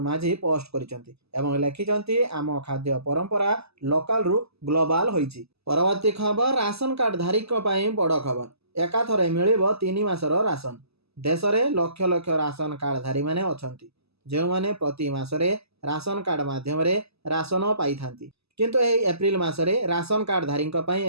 माझी पोस्ट करिसंती एवं लिखिसंती आम खाद्य परंपरा लोकल रु ग्लोबल होईची। परवर्ती खबर राशन कार्ड धारीक पई बड़ खबर। एकाथरे मिलिबो 3 मासर राशन। देश रे लक्ष लक्ष राशन कार्ड धारी माने अछंती जे माने प्रति मासरे राशन कार्ड माध्यम रे राशन पाई थांती। किंतु एही एप्रिल मासरे राशन कार्ड धारीक पई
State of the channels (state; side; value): late; left; 0.79 ms